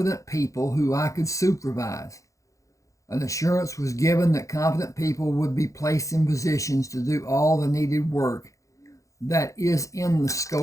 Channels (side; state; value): right; late; 0.15 ms